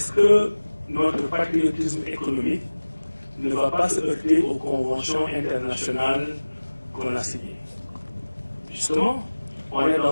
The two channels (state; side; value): inverted; both; correlation -1.00